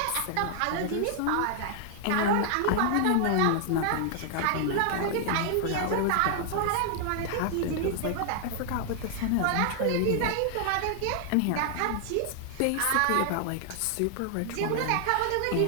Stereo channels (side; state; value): both; different; correlation 0.00